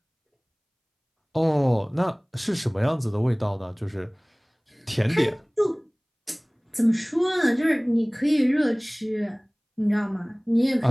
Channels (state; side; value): identical; both; correlation 1.00